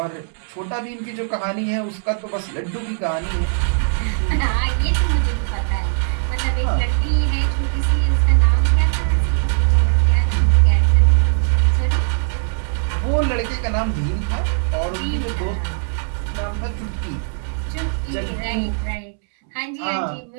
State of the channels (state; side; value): silent; left; 66 dB below the other